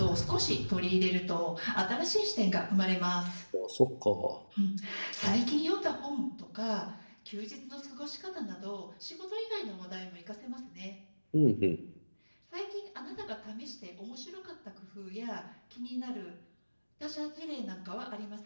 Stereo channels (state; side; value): inverted; both; correlation -1.00